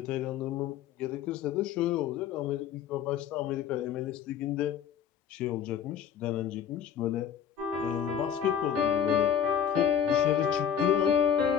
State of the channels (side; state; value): right; quieter; 8.6 dB